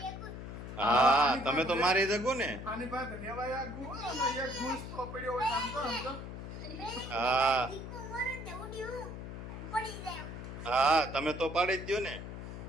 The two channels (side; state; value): left; noise; hum, 9 dB below the sound